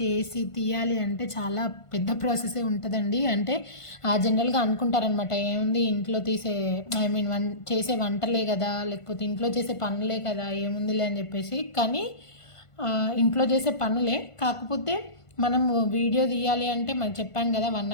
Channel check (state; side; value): late; right; 1.5 ms